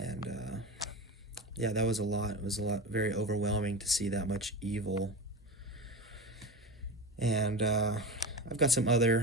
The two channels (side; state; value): both; normal; correlation 0.26